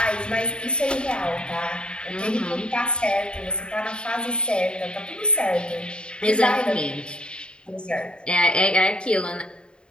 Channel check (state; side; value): late; right; 0.052 ms